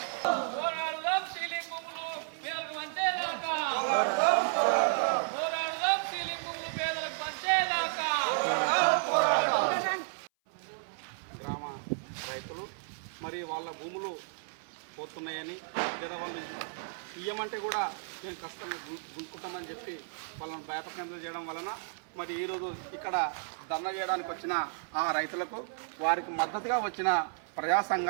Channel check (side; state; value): left; silent; 56 dB below the other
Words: రైతులు మరి వాళ్ళ భూములు పోతున్నాయని లేదా వాళ్ళు ఇయ్యమంటే కూడా మేము కష్టంగా గుంజుకుంటామని చెప్పి వాళ్ళని భయపకేంద్రం చేయడం వలన మరి ఈరోజు ఇక్కడ ధర్నా చేయడానికి వచ్చిన ఆ రైతులకు వారికి మద్దతుగా వచ్చిన ప్రజా